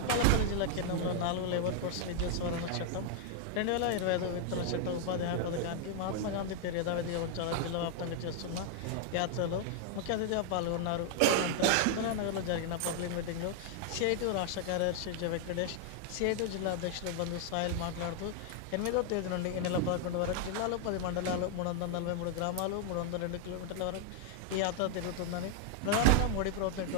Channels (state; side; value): different; both; correlation 0.00